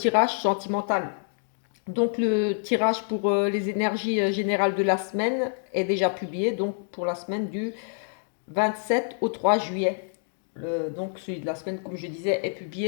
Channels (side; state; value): right; silent; digital silence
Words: sentimental. Donc le tirage pour les énergies générales de la semaine est déjà publié, donc pour la semaine du 27 au 3 juillet. Donc celui de la semaine, comme je disais, est